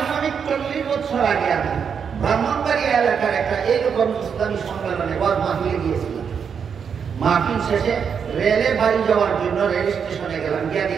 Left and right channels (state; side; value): quieter; left; 6.9 dB